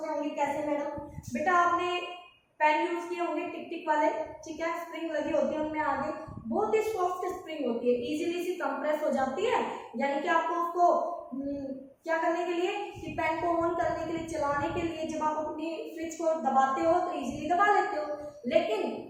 रहे होंगे कैसे मैडम? बेटा आपने पेन यूज किए होंगे टिक टिक वाले, ठीक है, स्प्रिंग लगी होती है उनमें आगे, बहुत ही सॉफ्ट स्प्रिंग होती है, इजीली सी कंप्रेस हो जाती है, यानी कि आपको उसको क्या करने के लिए, कि पेन को ऑन करने के लिए, चलाने के लिए जब आप अपनी स्विच को दबाते हो तो इजीली दबा लेते हो। लेकिन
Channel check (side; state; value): both; identical; correlation 1.00